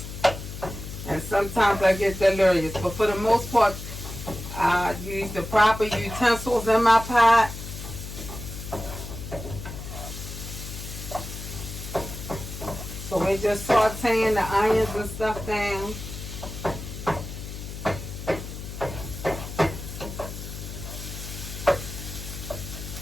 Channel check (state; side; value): noise; left; hum, 9 dB below the sound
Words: And sometimes I get delirious. But for the most part, I use the proper utensils in my pot. So we're just sauteing the onions and stuff down.